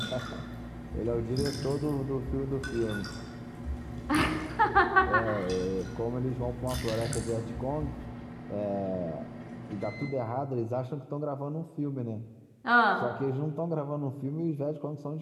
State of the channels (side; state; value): both; identical; correlation 1.00